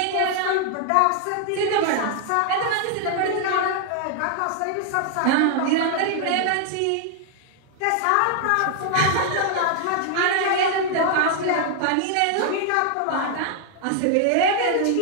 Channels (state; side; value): different; both; correlation 0.00